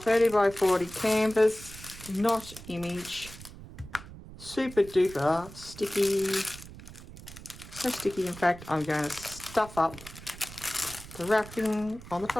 by 40 canvas. Not image. Super duper sticky. So sticky, in fact, I'm going to stuff up the wrapping on the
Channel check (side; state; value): right; noise; rumble, 16 dB below the sound